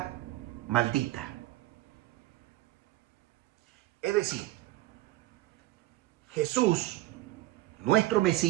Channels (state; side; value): quieter; left; 17.0 dB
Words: maldita. Es decir, Jesús, nuestro